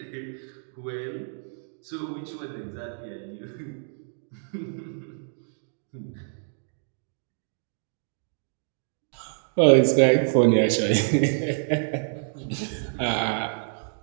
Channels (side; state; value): left; silent; digital silence